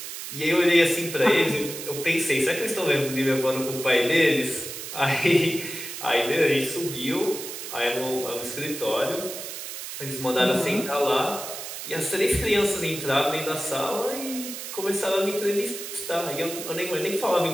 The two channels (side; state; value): right; noise; hiss, 8 dB below the sound